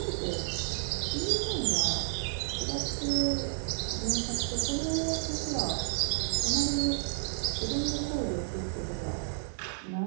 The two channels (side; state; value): left; silent; digital silence